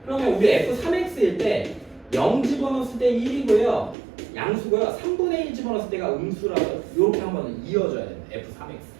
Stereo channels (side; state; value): left; drops out; at 4.0 s